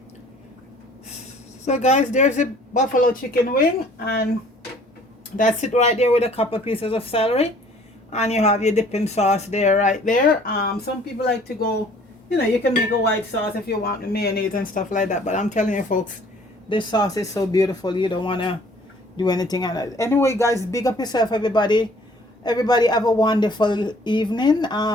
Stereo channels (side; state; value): both; normal; correlation 0.55